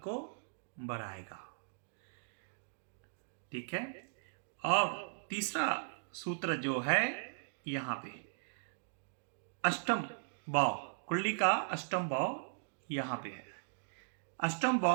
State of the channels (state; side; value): silent; left; digital silence